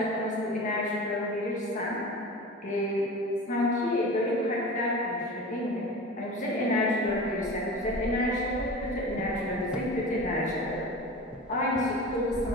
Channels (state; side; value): normal; both; correlation 0.33